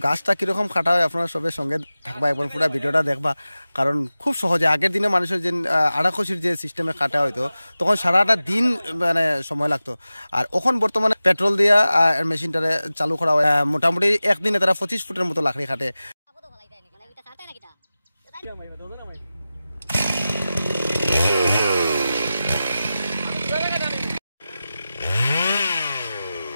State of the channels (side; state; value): both; inverted; correlation -0.95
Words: গাছটা কীরকম কাটা হয় আপনারা সবের সঙ্গে থাকবা এবং পুরো ভিডিওটা দেখবা, কারণ খুব সহজে আগের দিনে মানুষের যে আড়াখসির যে সিস্টেমে কাটা হইতো তখন সারাটা দিন মানে সময় লাগতো, আর এখন বর্তমানে পেট্রোল দিয়া মেশিনটারে চালু করা হয়। মোটামুটি একদিনে তারা 25 ফুটের মতো লাকড়ি কাটে।